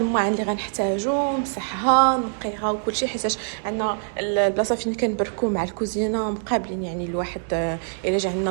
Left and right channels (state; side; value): silent; left; digital silence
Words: اللي غنحتاجو، نمسحها نقيها وكل شيء، حيت عندنا البلاصه فين كنبركو مع الكوزينه مقابلين، يعني الواحد الا جا عندنا